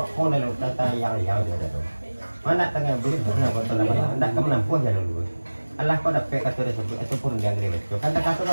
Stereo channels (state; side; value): inverted; both; correlation -1.00